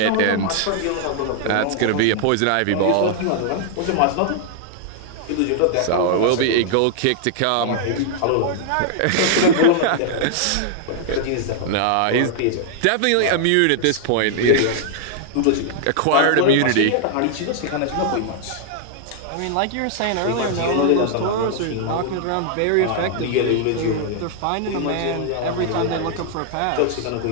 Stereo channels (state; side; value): different; both; correlation 0.00